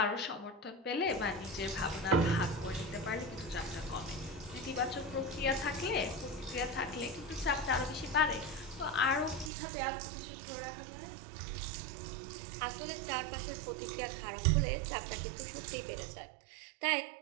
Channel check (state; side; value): drops out; left; at 9.5 s